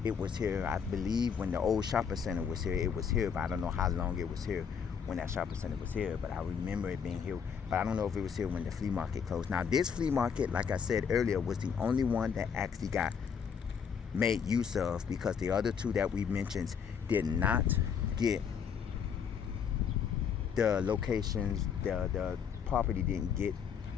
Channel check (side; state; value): right; quieter; 7.0 dB